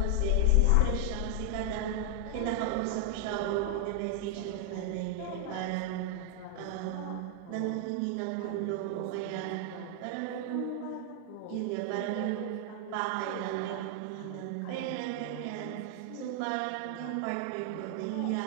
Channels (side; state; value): both; different; correlation 0.00